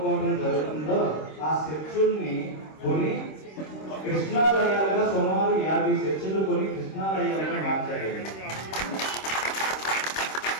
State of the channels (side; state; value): right; late; 26 ms